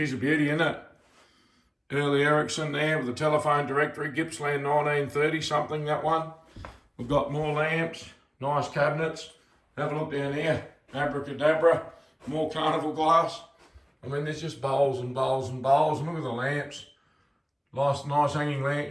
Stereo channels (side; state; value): both; identical; correlation 1.00